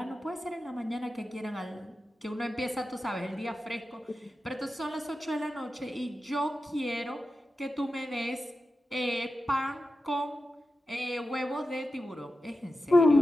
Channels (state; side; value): normal; both; correlation 0.92